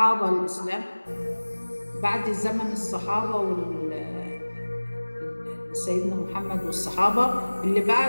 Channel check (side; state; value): both; inverted; correlation -1.00